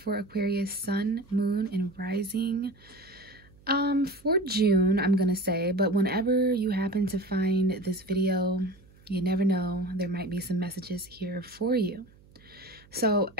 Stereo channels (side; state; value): right; noise; hum, 26 dB below the sound